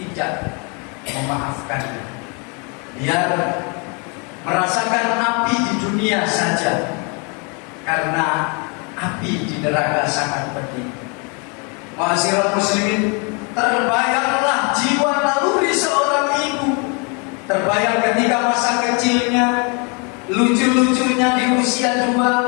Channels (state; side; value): quieter; right; 33.8 dB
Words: memaafkannya. Biar merasakan api di dunia saja, karena api di neraka sangat pedih. Ma'asyiral muslimin, terbayanglah jiwa naluri seorang ibu. Terbayang ketika masa kecilnya, lucu-lucunya di usia